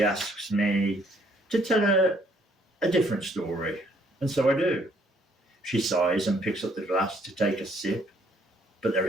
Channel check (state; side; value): normal; both; correlation 0.66